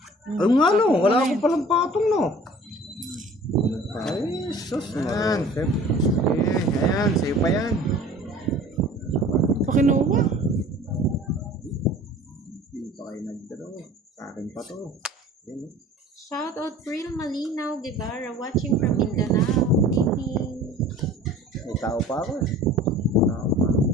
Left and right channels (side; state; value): both; normal; correlation 0.46